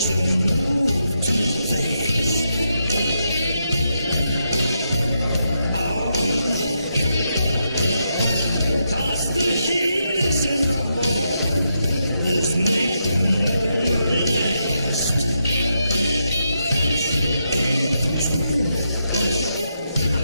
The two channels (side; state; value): both; inverted; correlation -0.82